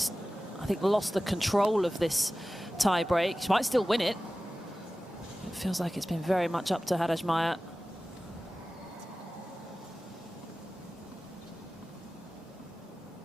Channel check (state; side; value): normal; both; correlation 0.96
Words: I think, lost the control of this tie break. She might still win it. It feels like it's been very much up to Haddad Maia.